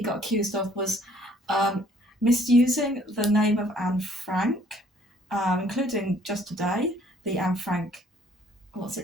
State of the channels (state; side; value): normal; both; correlation 0.60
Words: accused of was misusing the name of Anne Frank, including just today, the Anne Frank, what's